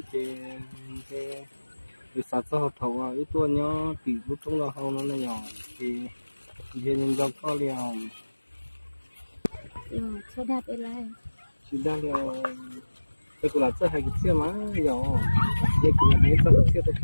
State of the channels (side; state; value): both; inverted; correlation -1.00